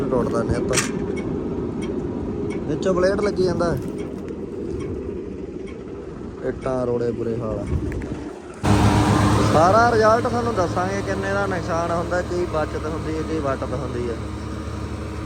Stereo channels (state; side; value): identical; both; correlation 1.00